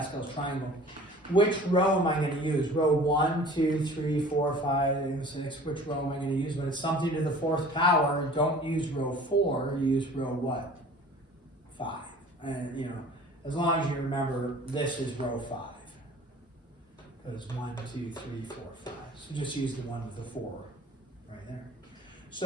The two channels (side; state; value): both; normal; correlation 0.46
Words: triangle. Which row am I going to use? Row 1, 2, 3, 4, 5, 6. Which row am I going to use? When it's something to the 4th power, don't use row 4. Use row what? 5. And you know, as long as you remember, this is row 5. Because 1, 2, 3, 4, 5. So just use the one with the 4 right there.